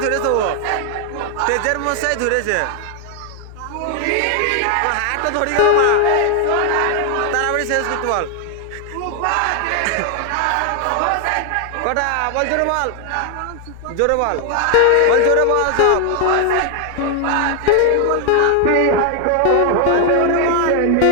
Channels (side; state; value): both; different; correlation 0.00